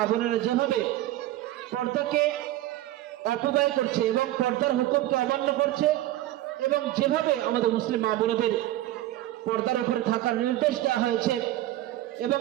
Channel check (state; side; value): quieter; left; 15.0 dB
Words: বোনেরা যেভাবে পর্দাকে অপব্যয় করছে এবং পর্দার হুকুমকে অমান্য করছে, এবং যেভাবে আমাদের মুসলিম মা বোনদের পর্দার উপরে থাকার নির্দেশ দেওয়া হয়েছে, এবং